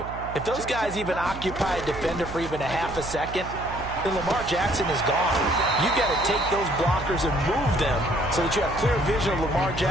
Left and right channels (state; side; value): noise; right; hum, 11 dB below the sound